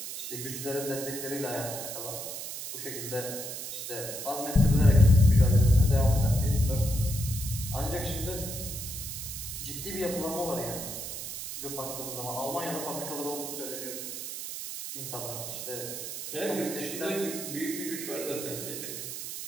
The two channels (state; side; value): noise; right; hiss, 7 dB below the sound